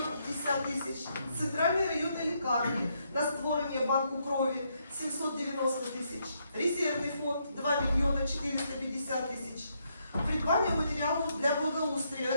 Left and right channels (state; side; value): inverted; both; correlation -0.76